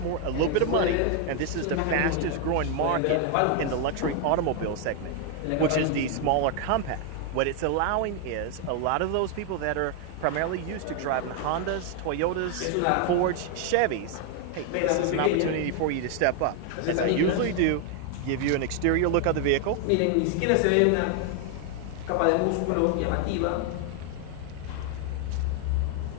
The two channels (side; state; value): both; different; correlation 0.00